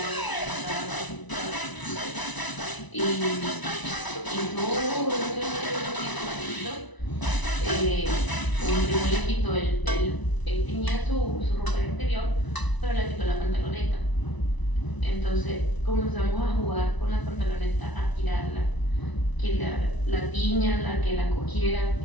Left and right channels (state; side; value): late; right; 1.0 ms